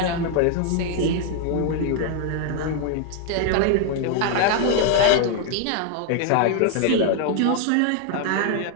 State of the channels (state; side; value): different; both; correlation 0.00